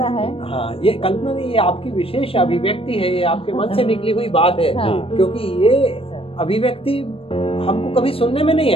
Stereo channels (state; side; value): late; right; 0.27 ms